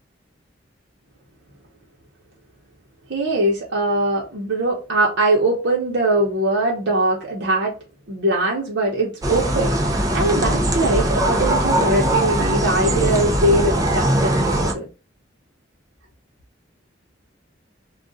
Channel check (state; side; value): normal; both; correlation 0.04